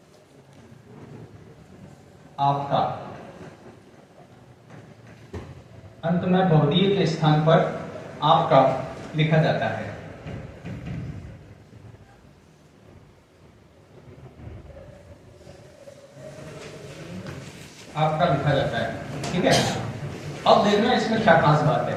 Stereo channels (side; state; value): both; identical; correlation 1.00